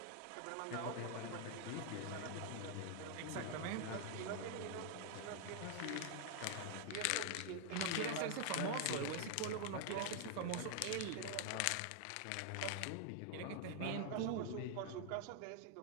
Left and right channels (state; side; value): different; both; correlation 0.00